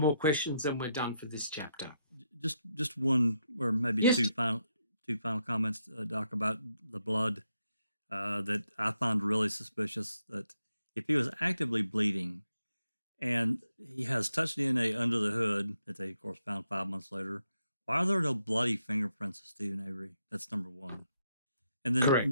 more questions and we're done for this chapter. Just one or maybe Yes. two final comments, Doc, about the blood that I found really suspicious. That if he was actively bleeding and he has touch DNA under the hood that they, of course, found 5 months later, why are there no bloody fingerprints of Stephen Avery? That's number one. And then,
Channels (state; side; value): inverted; both; correlation -0.80